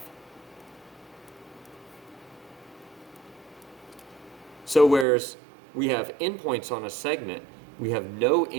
So whereas we have endpoints on a segment, we have no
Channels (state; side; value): drops out; left; at 5.1 s